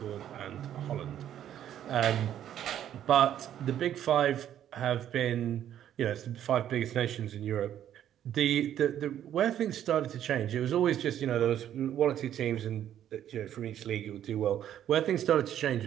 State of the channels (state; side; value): quieter; left; 10.7 dB